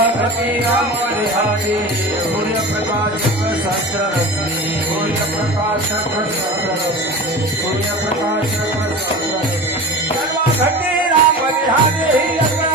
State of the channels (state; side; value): normal; both; correlation 0.33